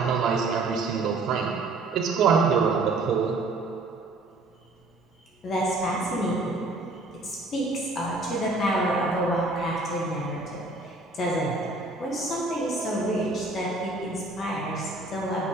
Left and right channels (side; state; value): left; quieter; 3.0 dB